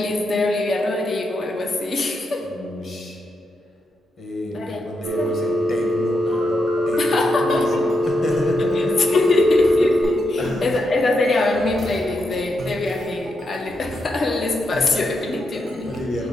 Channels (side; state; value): both; normal; correlation 0.83